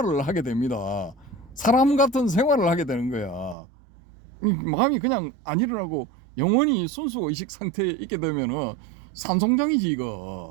하게 됩니다. 사람 같은 생활을 하게 되는 거야. 마음이 그냥 안 일어나고 영원히 순수의식 상태에 있게 되면은 산송장이지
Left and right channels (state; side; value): drops out; left; at 3.6 s